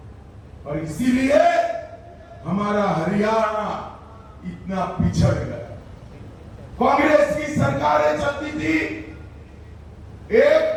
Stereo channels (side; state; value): both; identical; correlation 1.00